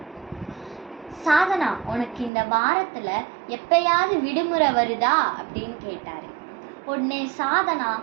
சாதனா உனக்கு இந்த வாரத்துல எப்பயாவது விடுமுறை வருதா அப்படின்னு கேட்டாரு. உடனே சாதனா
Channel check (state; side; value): drops out; left; at 2.3 s